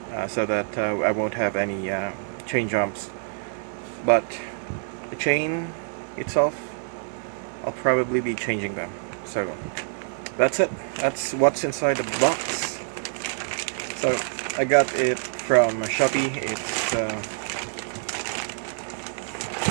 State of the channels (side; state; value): left; silent; 57 dB below the other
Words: so that I won't have any chain jumps. But the chain itself, I'll probably be changing them. So that's it. That's what's inside the box. So I got it from Shopee. It's